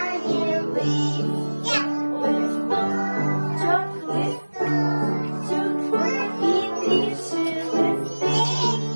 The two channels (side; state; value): both; inverted; correlation -1.00